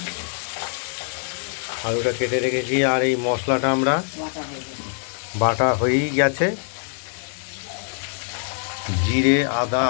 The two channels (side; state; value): right; silent; digital silence